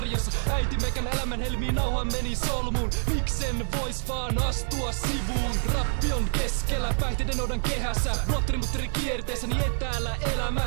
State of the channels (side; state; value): left; silent; digital silence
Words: Äiti meikän elämän helmiin nauha meni solmuun. Miksen vois vaan astua sivuun? Rappi on keskellä, päihteiden odan kehässä. Blotteri kierteessäni etäällä